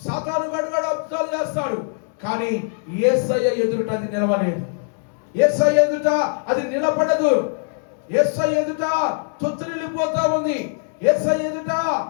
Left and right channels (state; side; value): silent; right; 64 dB below the other